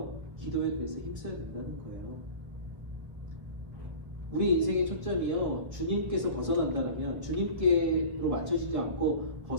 기도에 그래서 힘써야 된다는 거예요. 우리 인생의 초점이요, 주님께서 벗어난다라면, 주님께로 맞춰지지 않고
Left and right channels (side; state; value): left; late; 1.3 ms